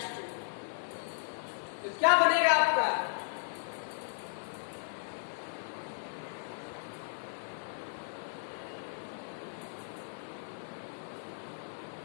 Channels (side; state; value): right; silent; digital silence